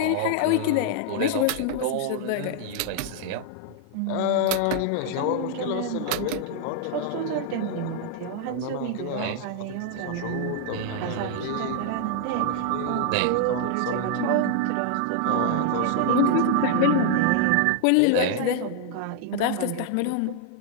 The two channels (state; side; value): different; both; correlation 0.00